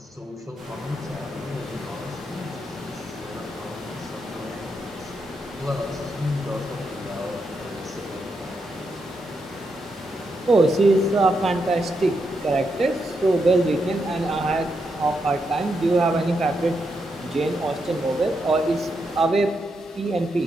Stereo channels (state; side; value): normal; both; correlation 0.82